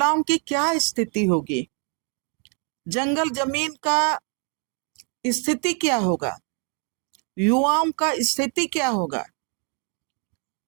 की क्या स्थिति होगी, जंगल जमीन का स्थिति क्या होगा, युवाओं का स्थिति क्या होगा,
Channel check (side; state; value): left; quieter; 37.7 dB